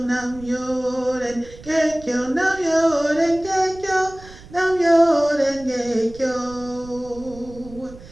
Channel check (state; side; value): noise; right; rumble, 19 dB below the sound